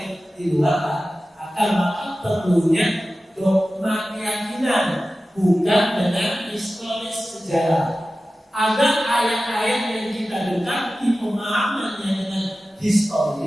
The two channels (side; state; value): both; normal; correlation 0.95